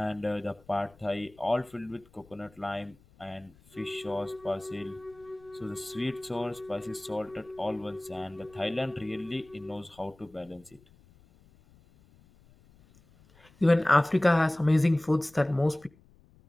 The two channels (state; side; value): noise; left; rumble, 28 dB below the sound